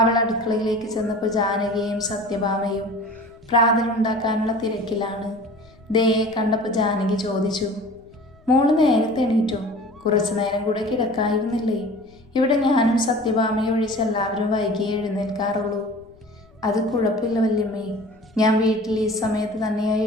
അവൾ അടുക്കളയിലേക്ക് ചെന്നപ്പോൾ ജാനകിയും സത്യഭാമയും പ്രാതലുണ്ടാക്കാനുള്ള തിരക്കിലാണ്. ദയയെ കണ്ടപ്പോൾ ജാനകി ചോദിച്ചു, മോള് നേരത്തെ എണീറ്റോ? കുറച്ചു നേരം കൂടെ കിടക്കായിരുന്നില്ലേ? ഇവിടെ ഞാനും സത്യഭാമയും ഒഴിച്ച് എല്ലാവരും വൈകിയേ എഴുന്നേൽക്കാറുള്ളൂ. അത് കുഴപ്പമില്ല വല്യമ്മേ, ഞാൻ വീട്ടിൽ ഈ സമയത്ത് തന്നെയായി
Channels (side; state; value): left; noise; rumble, 28 dB below the sound